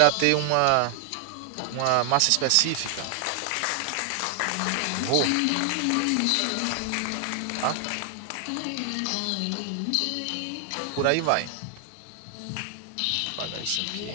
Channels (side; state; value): both; different; correlation 0.00